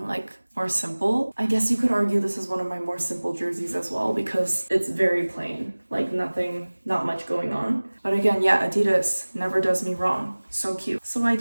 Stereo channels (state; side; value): inverted; both; correlation -1.00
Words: like more simple. I guess you could argue this is one of my more simple jerseys as well because it's very plain, like not much going on. But again, yeah, Adidas never does me wrong. So cute. So I